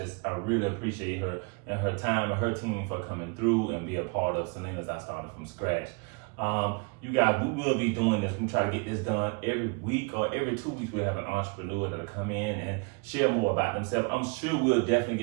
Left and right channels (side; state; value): left; quieter; 34.0 dB